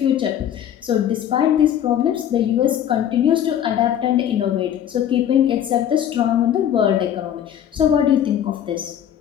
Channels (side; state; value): right; quieter; 10.1 dB